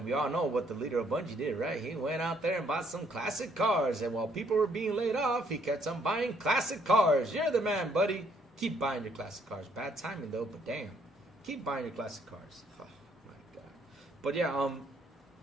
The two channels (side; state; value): both; normal; correlation 0.67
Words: we all know what the leader of Bungie did, right? He went out there and bought some classic cars. And while people were being laid off, he kept on buying classic cars. You're the man, buddy. Keep buying your classic cars. Bad timing, though, but damn. Keep buying your classic cars. Oh, my God. But, yeah,